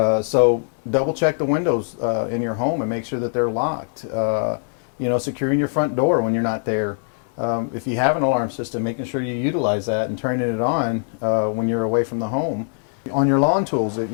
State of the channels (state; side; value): silent; right; 64 dB below the other